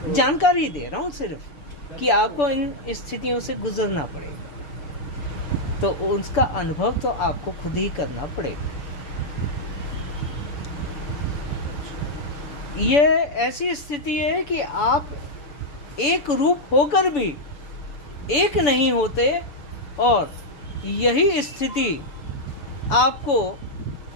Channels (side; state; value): right; late; 6.9 ms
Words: जानकारी दे रहा हूँ सिर्फ कि आपको इन स्थितियों से गुजरना पड़ेगा, तो उसका अनुभव तो आपको खुद ही करना पड़ेगा। ये ऐसी स्थिति है कि आप एक रूप होकर भी एक नहीं होते, और यही स्थिति आपको